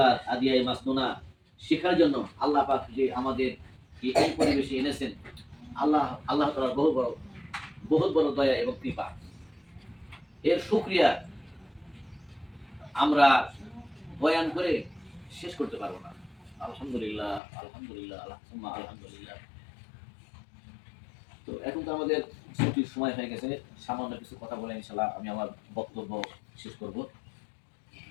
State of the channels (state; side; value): drops out; right; at 17.4 s